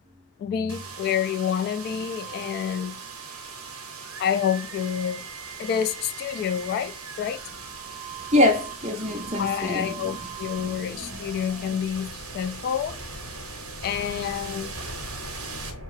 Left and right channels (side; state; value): right; quieter; 4.3 dB